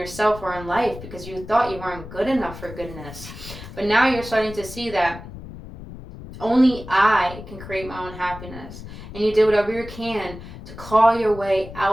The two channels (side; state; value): left; noise; rumble, 13 dB below the sound